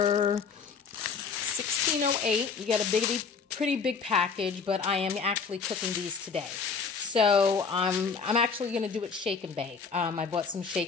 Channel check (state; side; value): quieter; right; 5.4 dB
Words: $16.08. You get a pretty big package, but I am actually cooking these today. So I'm actually going to do it shake and bake. I bought some